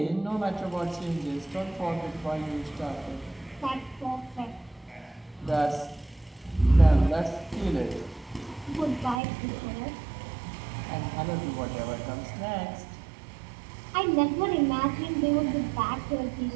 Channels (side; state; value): left; drops out; at 9.2 s